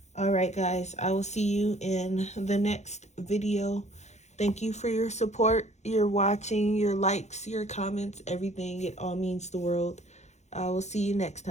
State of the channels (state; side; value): late; right; 0.33 ms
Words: All right, guys. I will see you in the next video. Thank you for your support, your watching, your likes, your comments, everything. It all means the world. I will see you next